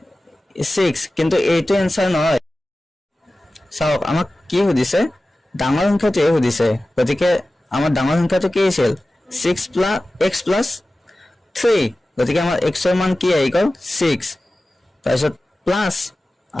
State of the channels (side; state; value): both; normal; correlation 0.96